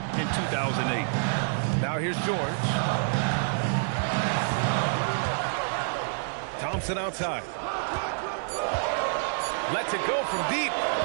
in 2008. Now here's George. Thompson outside. Lets it go from deep.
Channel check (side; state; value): left; silent; 60 dB below the other